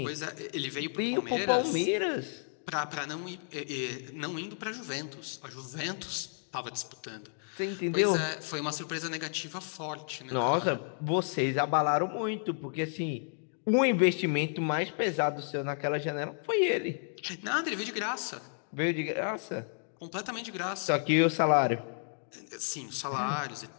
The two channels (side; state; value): right; silent; digital silence